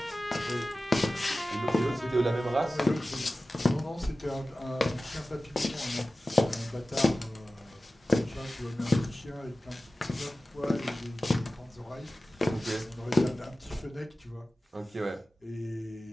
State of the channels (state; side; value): normal; both; correlation 0.96